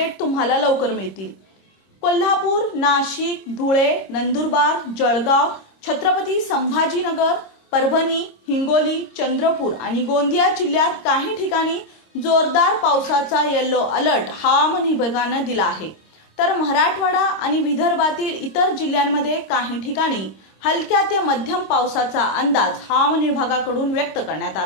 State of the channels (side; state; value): right; late; 26 ms